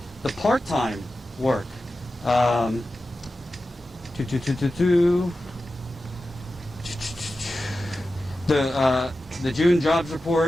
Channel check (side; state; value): both; normal; correlation 0.93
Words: the part-time work, the June jobs